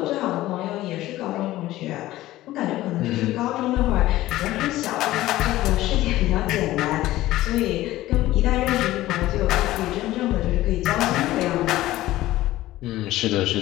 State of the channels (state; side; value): quieter; right; 16.0 dB